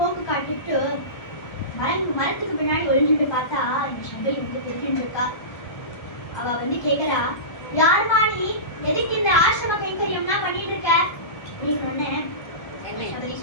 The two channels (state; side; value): late; right; 1.2 ms